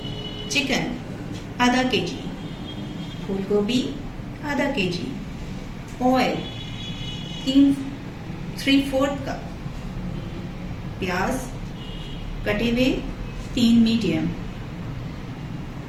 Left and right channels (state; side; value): identical; both; correlation 1.00